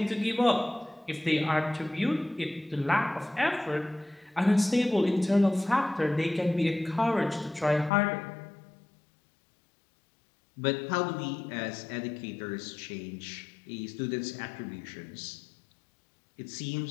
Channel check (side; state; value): right; drops out; at 7.9 s